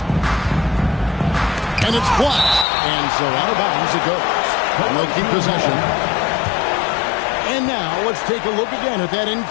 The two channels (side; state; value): right; drops out; at 2.7 s